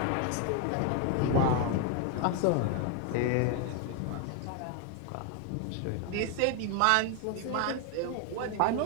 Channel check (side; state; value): both; different; correlation 0.01